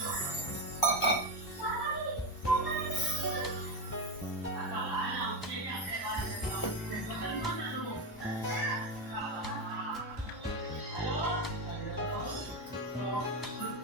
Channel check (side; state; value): both; normal; correlation 0.13